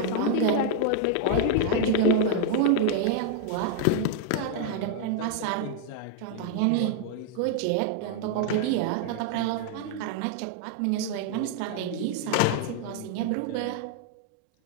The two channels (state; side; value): different; both; correlation 0.00